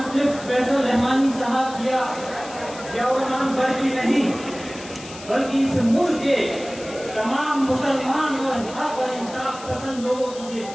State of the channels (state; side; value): noise; left; hiss, 16 dB below the sound